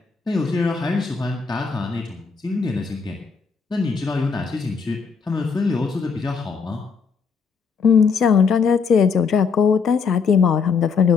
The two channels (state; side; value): quieter; right; 5.5 dB